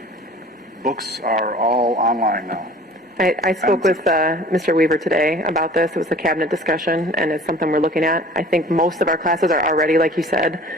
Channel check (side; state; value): both; normal; correlation 0.46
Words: books are all online now? I spoke with Mr. Weaver today about this. It was a cabinet discussion, and it's something we're looking at. I think most of our classes are already, like you said,